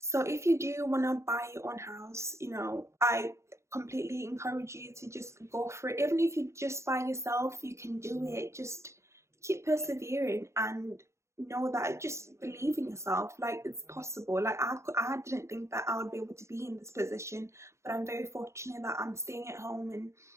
if you do want to buy your own house, you know, I completely encourage you to just go for it. Even if you're just by yourself, you can do it. Just keep persevering and know that, just believe in yourself. Like, it's possible. Like, I didn't think that I would be able to be in this position, but I'm very fortunate that I'm staying at home and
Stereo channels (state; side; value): late; left; 0.14 ms